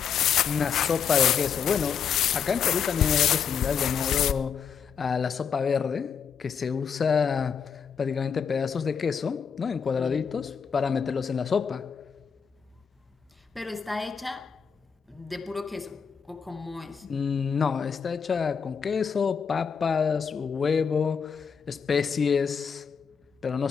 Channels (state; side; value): quieter; right; 6.8 dB